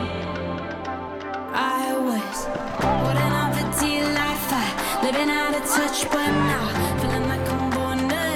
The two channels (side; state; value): both; identical; correlation 1.00